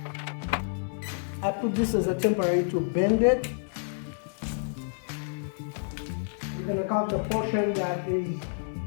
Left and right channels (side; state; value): right; silent; 59 dB below the other